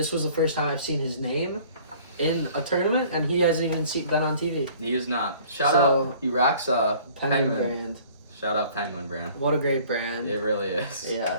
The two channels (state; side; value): inverted; both; correlation -0.52